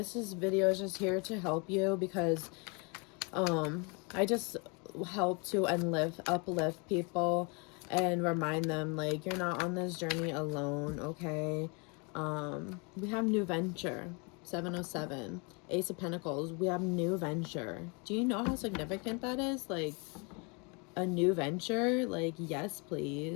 video is just here to help you, because I just help to uplift people and remind them, like, you're not on this journey alone, okay? We have new venture, 707, Ace of Pentacles. We have new venture. Do you know how significant that is? Like, a new venture? Like, yes,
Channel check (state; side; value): quieter; right; 32.1 dB